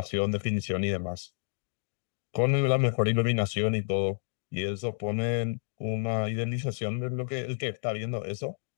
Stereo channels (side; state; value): right; silent; digital silence